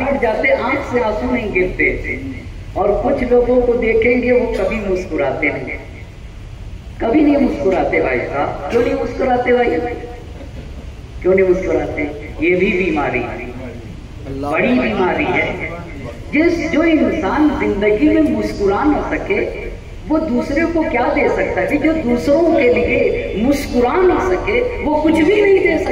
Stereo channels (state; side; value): identical; both; correlation 1.00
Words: جاتے، آنکھ سے آنسو نہیں گرتے۔ اور کچھ لوگوں کو دیکھیں گے وہ کبھی مسکراتے نہیں، کبھی نہیں مسکراتے۔ بھائی صاحب کیوں نہیں مسکراتے؟ بھائی کیوں نہیں مسکراتے؟ یہ بھی بیماری ہے، بڑی بیماری ہے۔ جو انسان زندگی میں مسکرا نہ سکے وہ دوسرے کو کیا دے سکتا ہے؟ جو دوسروں کے لیے مسکرا نہ سکے وہ کچھ بھی نہیں دے